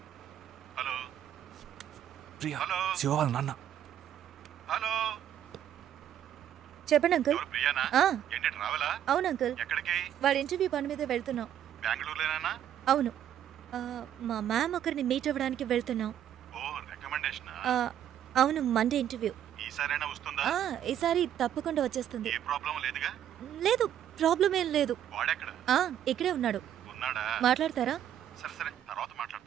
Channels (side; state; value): left; quieter; 10.5 dB